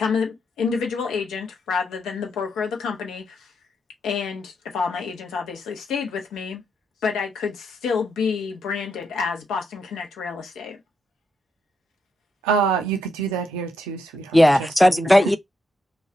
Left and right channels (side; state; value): both; normal; correlation 0.81